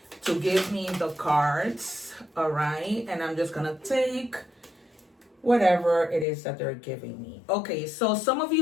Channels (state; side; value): drops out; right; at 6.2 s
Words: to give me the cards. All right, and I'm just gonna take whatever it is that they're giving me. Okay, so some of